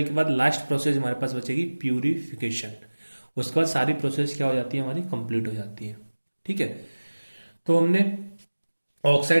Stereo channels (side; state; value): both; inverted; correlation -1.00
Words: के बाद लास्ट प्रोसेस हमारे पास बचेगी प्यूरिफिकेशन। उसके बाद सारी प्रोसेस क्या हो जाती है, हमारी कंप्लीट हो जाती है। ठीक है। तो हमने